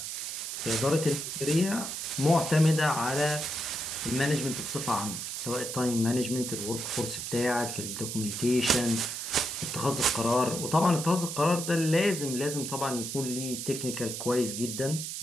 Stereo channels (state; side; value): noise; right; hiss, 6 dB below the sound